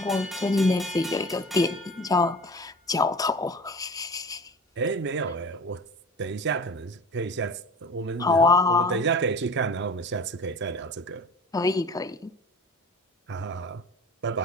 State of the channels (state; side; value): normal; both; correlation 0.38